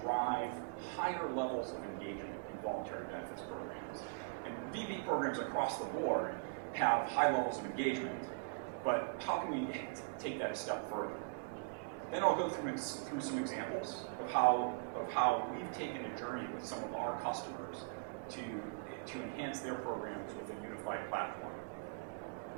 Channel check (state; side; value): quieter; left; 35.4 dB